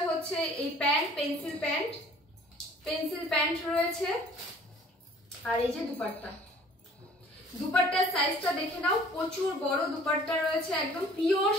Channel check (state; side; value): normal; both; correlation 0.52